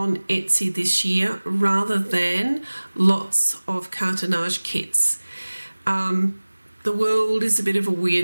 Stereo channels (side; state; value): both; inverted; correlation -1.00